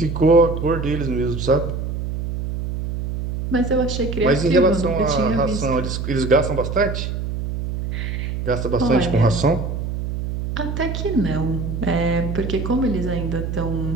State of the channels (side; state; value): right; noise; hum, 4 dB below the sound